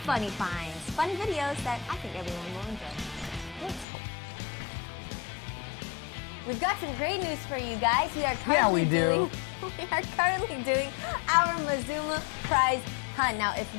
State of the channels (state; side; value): drops out; right; at 3.9 s